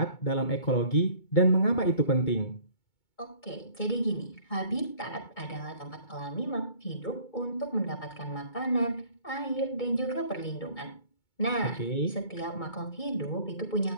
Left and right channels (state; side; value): late; right; 2.2 ms